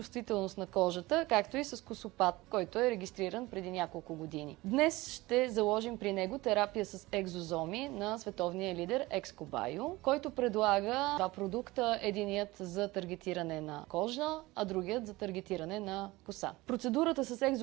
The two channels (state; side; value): quieter; left; 20.3 dB